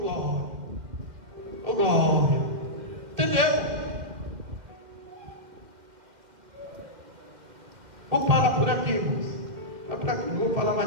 Ô glória. Entendeu? Vou parar por aqui, irmãos. Vai por aqui, não vou falar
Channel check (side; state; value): left; late; 2.1 ms